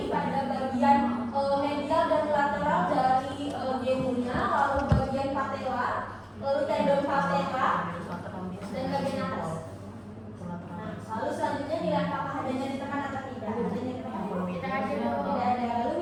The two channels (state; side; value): identical; both; correlation 1.00